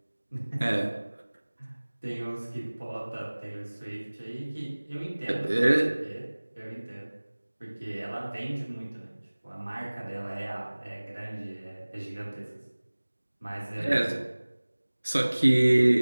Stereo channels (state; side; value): inverted; both; correlation -1.00